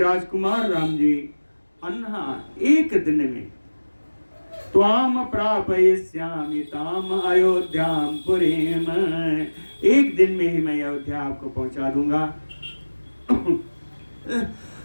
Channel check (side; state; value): both; inverted; correlation -1.00